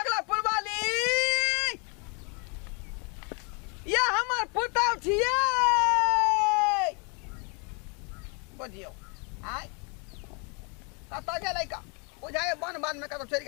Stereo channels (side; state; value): right; quieter; 34.6 dB